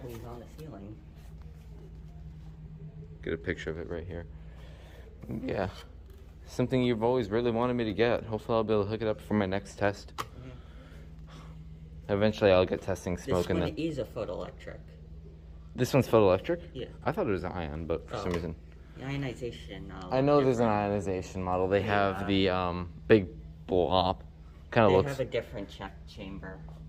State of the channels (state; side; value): identical; both; correlation 1.00